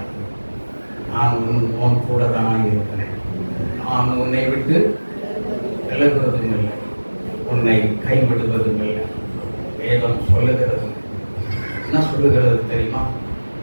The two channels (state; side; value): inverted; both; correlation -1.00